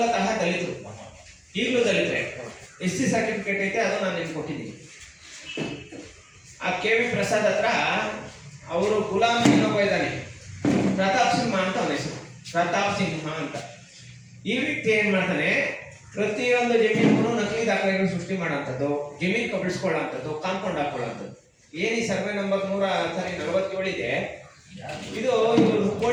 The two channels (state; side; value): identical; both; correlation 1.00